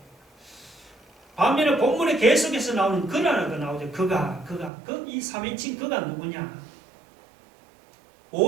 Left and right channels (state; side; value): drops out; left; at 4.7 s